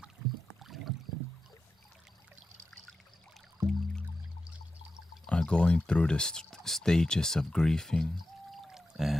are going through the stages of grieving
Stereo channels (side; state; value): both; normal; correlation 0.91